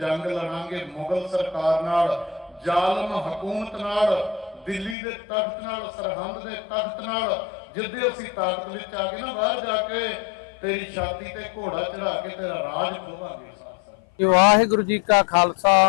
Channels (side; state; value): right; drops out; at 5.0 s